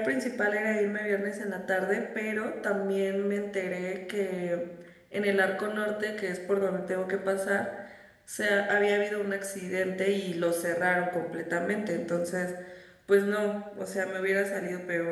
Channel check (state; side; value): identical; both; correlation 1.00